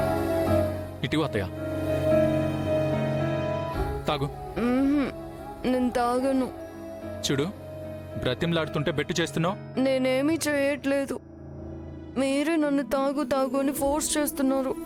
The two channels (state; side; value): identical; both; correlation 1.00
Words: ఇటు అత్తయ్య తాగు. నేను తాగను. చూడు బ్రతిమలాడుతుంటే బెట్టు చేస్తున్నావు. నేనేమీ చేయట్లేదు. మీరే నన్ను తాగు తాగు అని ఫోర్స్ చేస్తున్నారు.